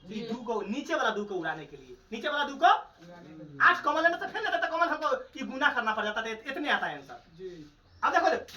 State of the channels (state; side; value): identical; both; correlation 1.00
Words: ये 2 को नीचे वाला 2 को उड़ाने के लिए, नीचे वाला 2 को 8 कॉमन लेना तो फिर ना तो कॉमन हमको ये गुना करना पड़ जाता है, इतने आता है आंसर जी। अब देखो